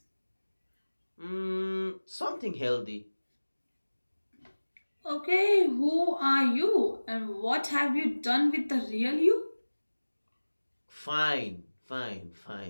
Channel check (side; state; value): both; inverted; correlation -1.00